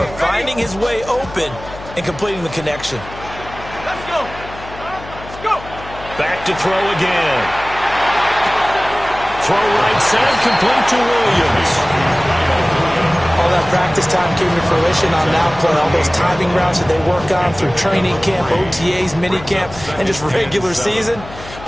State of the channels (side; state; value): left; noise; hum, 15 dB below the sound